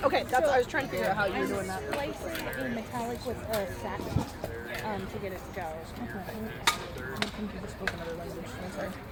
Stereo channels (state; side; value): identical; both; correlation 1.00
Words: okay, that's I was trying to figure out how you were doing that. Slicing in metallic with a satin to get it to go.